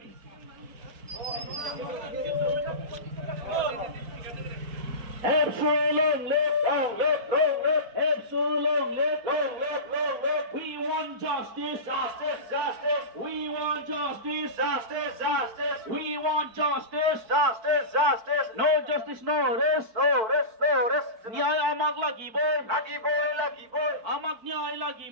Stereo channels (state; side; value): late; left; 4.6 ms